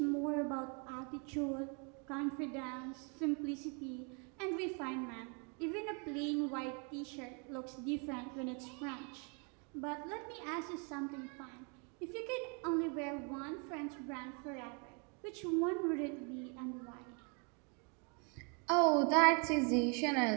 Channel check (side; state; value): left; quieter; 36.0 dB